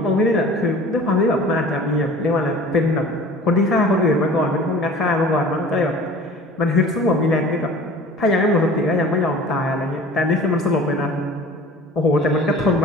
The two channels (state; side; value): normal; both; correlation 0.44